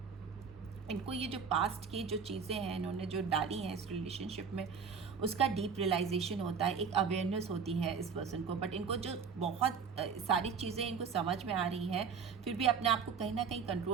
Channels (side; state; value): left; quieter; 6.1 dB